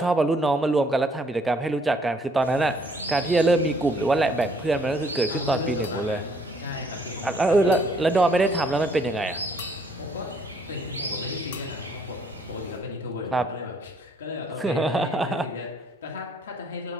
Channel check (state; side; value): normal; both; correlation 0.65